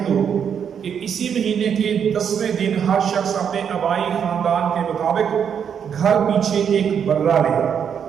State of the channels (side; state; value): left; quieter; 7.8 dB